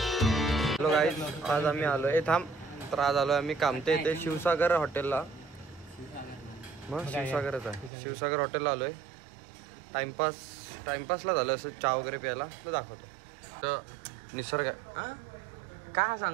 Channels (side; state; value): left; drops out; at 7.9 s